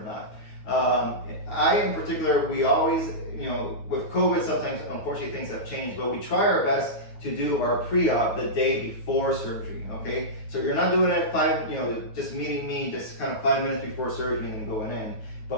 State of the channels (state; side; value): late; right; 9.3 ms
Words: not. I in particular, we always, with COVID, sometimes unfortunately things have changed, but we try our best to do our pre-op the day before surgery. Okay, so you're not doing it just meeting me just kind of 5 minutes before surgery and then going in.